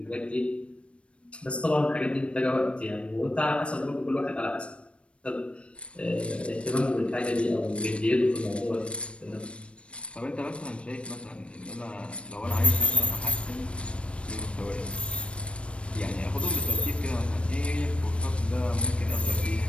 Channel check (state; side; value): late; right; 0.060 ms